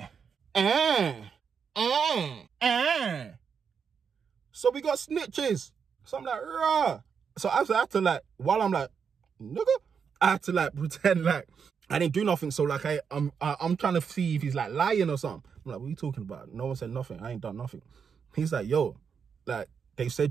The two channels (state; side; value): quieter; left; 6.5 dB